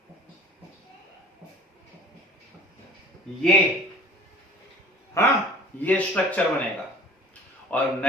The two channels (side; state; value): both; normal; correlation 0.46